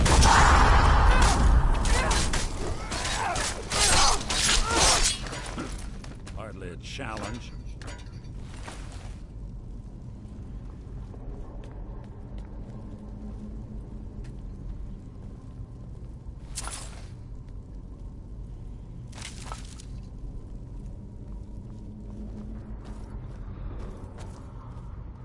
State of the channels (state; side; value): identical; both; correlation 1.00